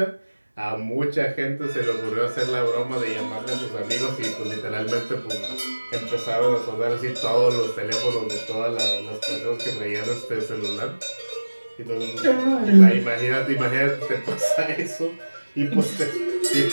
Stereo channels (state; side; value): inverted; both; correlation -1.00